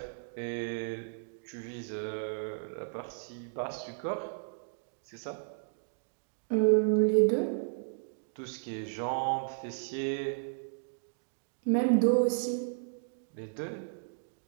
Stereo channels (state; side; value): silent; left; digital silence